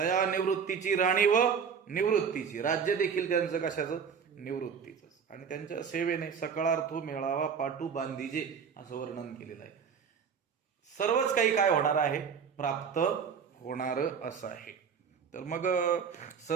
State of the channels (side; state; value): left; quieter; 6.7 dB